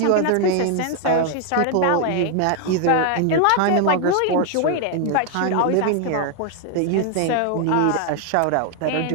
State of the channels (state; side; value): different; both; correlation 0.00